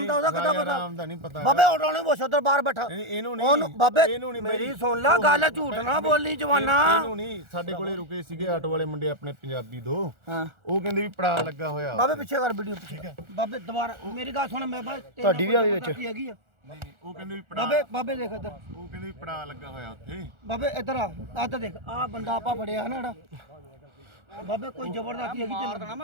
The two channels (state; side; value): late; left; 1.4 ms